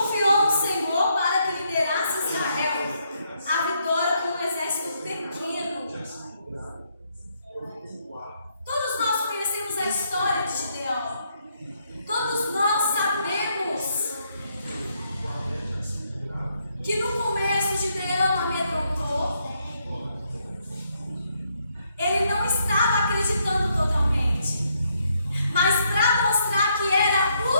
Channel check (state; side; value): inverted; both; correlation -0.75